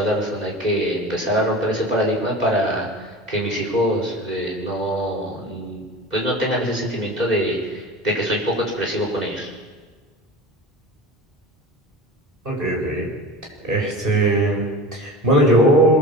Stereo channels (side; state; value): both; normal; correlation 0.34